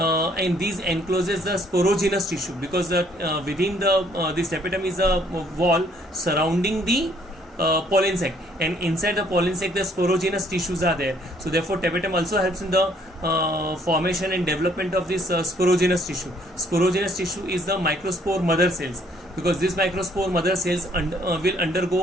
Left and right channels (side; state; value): both; normal; correlation 0.64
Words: the sporogenous tissue, because within the this tapetum is a wall surrounding the pollen sac, and inside the pollen sac the sporogenous tissues are there. So therefore tapetum also helps in the formation and development of this sporogenous tissue. Sporogenous tissue is the microspore mother cells, because this microspore mother cells will